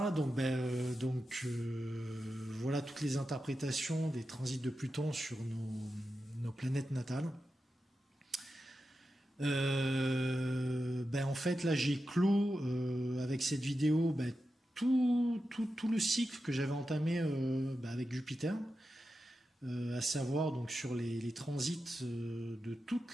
donc, voilà toutes les interprétations des transits de Pluton sur nos planètes natales. En fait, là, j'ai clos avec cette vidéo tout le cycle que j'avais entamé avec Jupiter, à savoir donc sur les transits de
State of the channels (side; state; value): both; normal; correlation 0.90